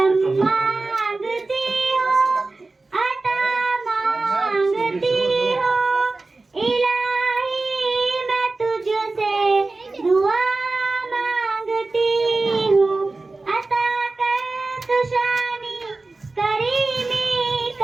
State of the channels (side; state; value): left; quieter; 3.5 dB